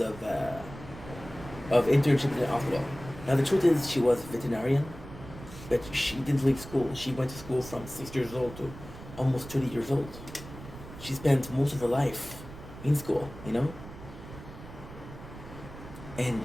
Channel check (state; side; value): noise; right; rumble, 14 dB below the sound